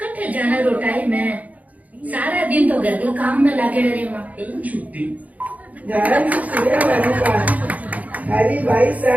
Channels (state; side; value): late; left; 0.073 ms